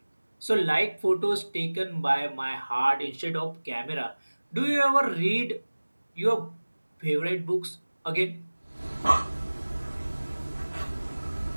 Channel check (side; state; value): both; inverted; correlation -1.00